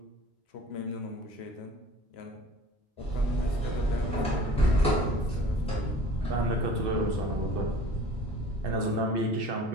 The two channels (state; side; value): normal; both; correlation 0.46